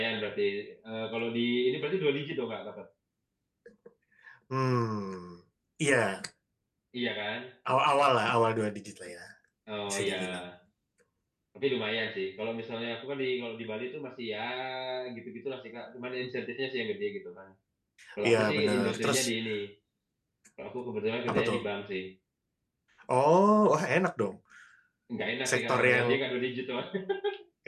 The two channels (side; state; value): both; identical; correlation 1.00